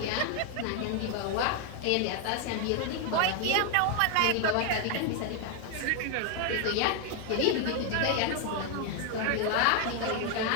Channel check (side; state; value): both; different; correlation 0.01